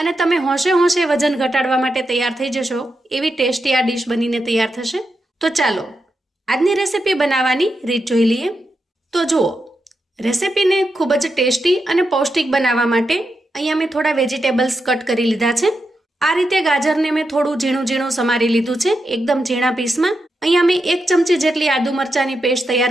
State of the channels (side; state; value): both; normal; correlation 0.86